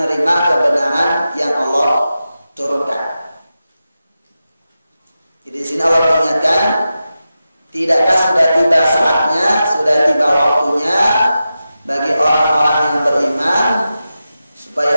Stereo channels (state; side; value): inverted; both; correlation -0.91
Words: kebenaran yang Allah turunkan. Jadi di sini Allah mengingatkan, tidakkah sudah tiba saatnya, sudah tiba waktunya bagi orang-orang yang beriman supaya